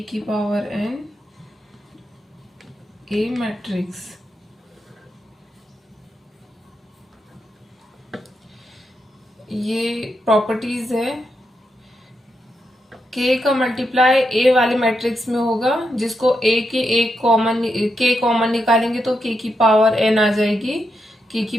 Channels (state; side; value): normal; both; correlation 0.84